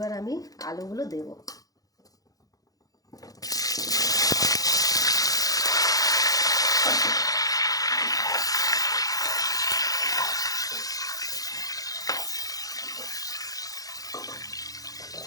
আমি আলুগুলো দেব।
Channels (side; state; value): right; late; 0.17 ms